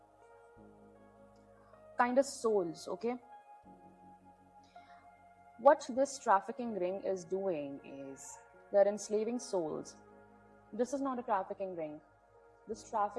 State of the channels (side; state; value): both; identical; correlation 1.00